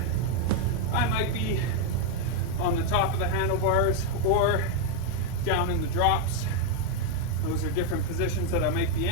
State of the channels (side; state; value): both; different; correlation 0.01